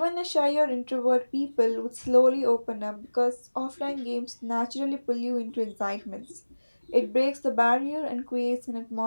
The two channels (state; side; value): inverted; both; correlation -1.00